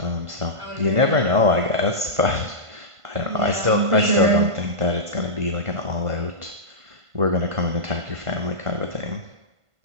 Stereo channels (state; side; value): late; left; 1.5 ms